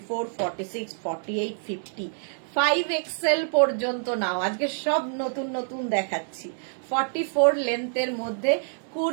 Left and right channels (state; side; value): silent; left; 60 dB below the other